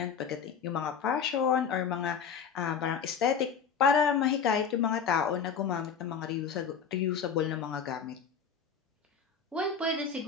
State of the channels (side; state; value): right; quieter; 6.7 dB